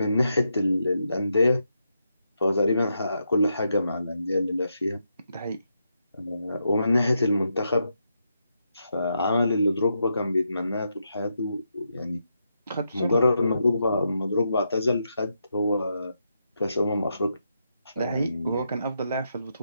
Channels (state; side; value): inverted; both; correlation -0.83